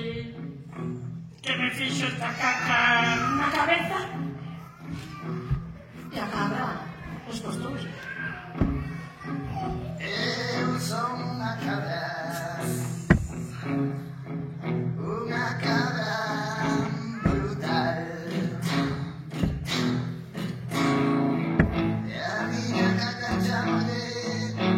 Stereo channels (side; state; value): both; identical; correlation 1.00